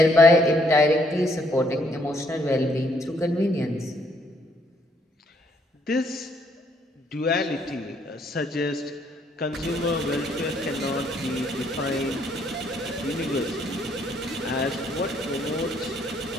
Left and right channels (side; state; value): both; normal; correlation 0.69